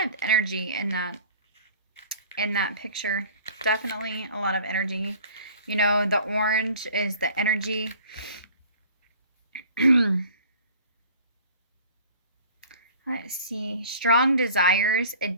of energy in that picture. Definitely a lot of energy. You know, the orange is the energy. Let's see. Strong desires,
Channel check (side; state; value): both; inverted; correlation -0.47